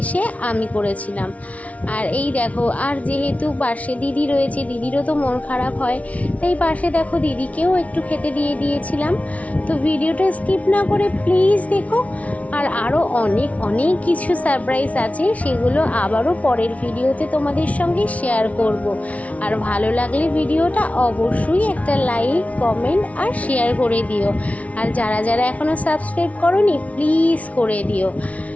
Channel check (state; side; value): late; right; 0.067 ms